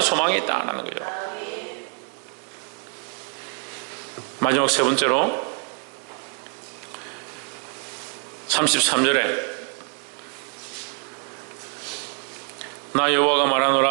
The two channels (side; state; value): left; quieter; 39.2 dB